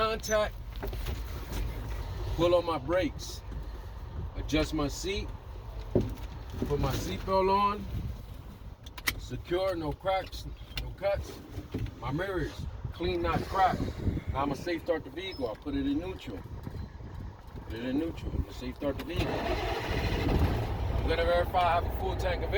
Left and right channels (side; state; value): both; identical; correlation 1.00